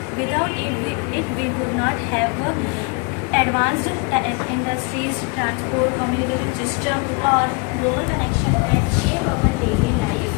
Without it we would not have advanced industries, transport, communication system, or global connection that shape our daily life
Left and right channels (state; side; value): quieter; right; 31.8 dB